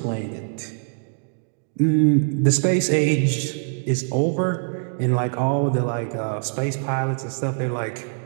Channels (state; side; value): silent; left; 63 dB below the other